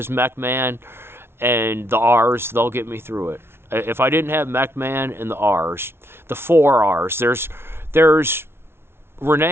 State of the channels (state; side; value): late; left; 0.12 ms